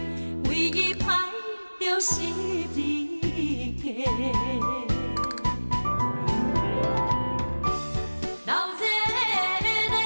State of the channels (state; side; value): inverted; both; correlation -1.00